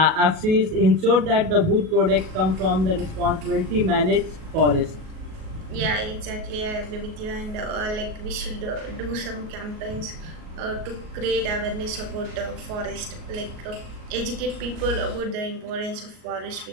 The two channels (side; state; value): left; late; 38 ms